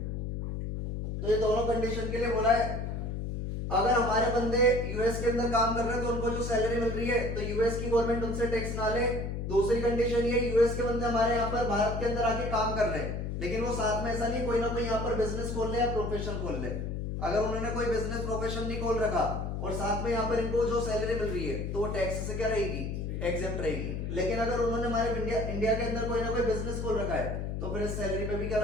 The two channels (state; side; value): noise; left; hum, 3 dB below the sound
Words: तो ये दोनों कंडीशन के लिए बोला है। अगर हमारे बंदे यूएस के अंदर काम कर रहे हैं तो उनको जो सैलरी मिल रही है तो यूएस की गवर्नमेंट उनसे टैक्स ना ले। दूसरी कंडीशन ये, यूएस के बंदे हमारे यहाँ पर भारत के अंदर आके काम कर रहे हैं, लेकिन वो साथ में ऐसा नहीं कोई ना कोई यहाँ पर बिजनेस खोल ले या प्रोफेशन खोल ले। अगर उन्होंने कोई बिजनेस प्रोफेशन नहीं खोल रखा और साथ में यहाँ पर इनको जो सैलरी मिल रही है तो वो टैक्स से क्या रहेगी, एग्जेम्प्ट रहेगी। लेकिन अगर उन्होंने हमारे इंडिया के अंदर कोई ना कोई बिजनेस खोल रखा है तो फिर इस सैलरी पे भी क्या